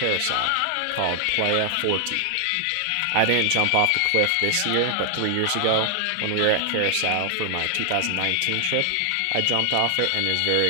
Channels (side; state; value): both; different; correlation 0.00